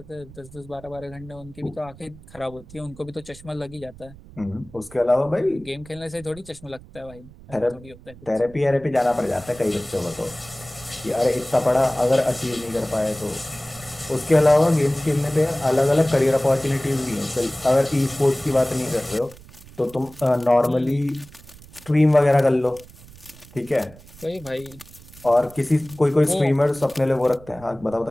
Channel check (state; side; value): noise; right; rumble, 20 dB below the sound